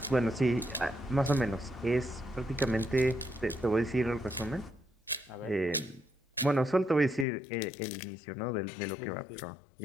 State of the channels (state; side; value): drops out; right; at 7.2 s